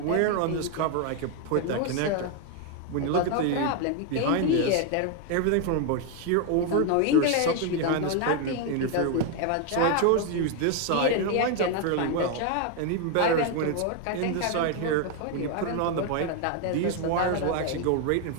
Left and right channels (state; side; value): different; both; correlation 0.01